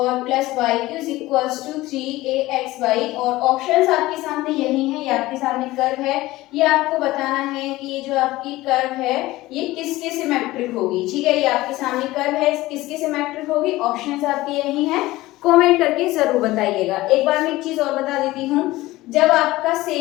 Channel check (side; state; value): right; quieter; 18.1 dB